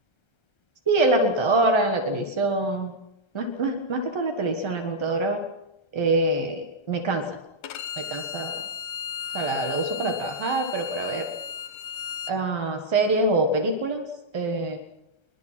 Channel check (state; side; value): late; right; 1.3 ms